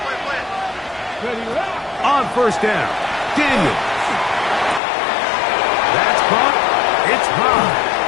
On first down, Daniel. That's caught. It's high.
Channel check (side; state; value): right; drops out; at 4.8 s